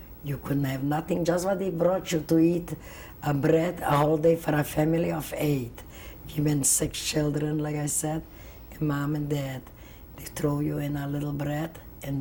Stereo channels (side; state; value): both; identical; correlation 1.00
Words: You couldn't have nothing, just what they brought you to eat, a bread, a whole day for a family of 8. We been 6 children, like I said, and mom and dad. They throw you in a little bread